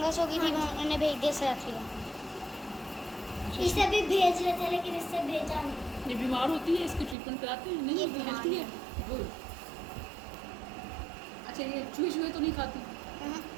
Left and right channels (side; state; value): left; drops out; at 7.2 s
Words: हो गई थी, हाँ। उन्होंने भेज दिया से रख लिया। इसे भी भेज रहे थे लेकिन इससे भेजा नहीं। ये बीमार होती है, इसकी ट्रीटमेंट कराते हैं? नहीं, ये ये बीमार हेल्थी है। गुड। अच्छा, ये चूहे तो नहीं खाती?